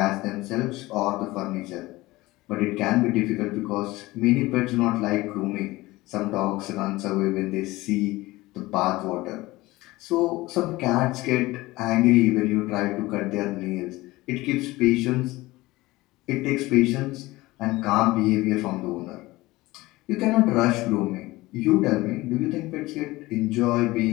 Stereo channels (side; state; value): right; quieter; 19.6 dB